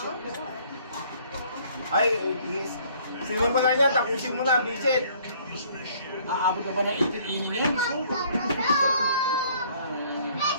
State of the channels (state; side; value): inverted; both; correlation -0.59